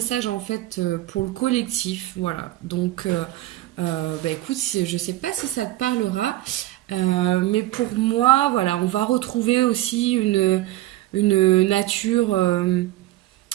en fait pour le collectif, voilà. Donc, écoute, je sais pas si ça te parlera, mais pour moi, voilà, on va retrouver aussi une nature,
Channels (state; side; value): quieter; left; 16.1 dB